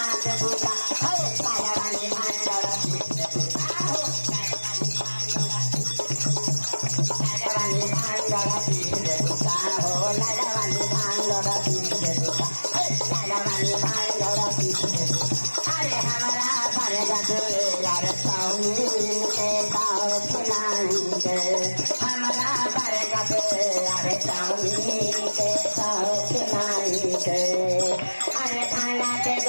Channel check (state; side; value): inverted; both; correlation -1.00